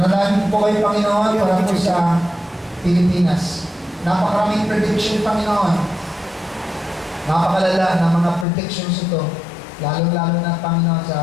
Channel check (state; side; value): drops out; right; at 8.5 s